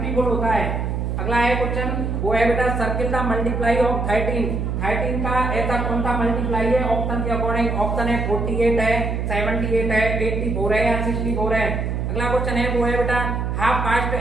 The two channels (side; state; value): right; noise; hum, 1 dB below the sound